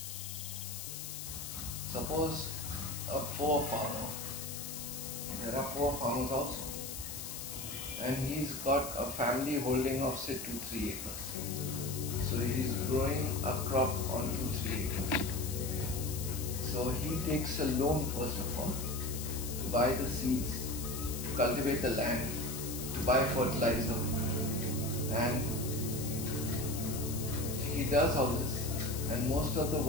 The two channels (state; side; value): noise; left; hiss, 7 dB below the sound